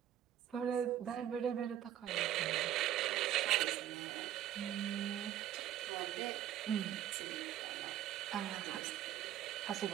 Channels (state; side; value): quieter; left; 11.5 dB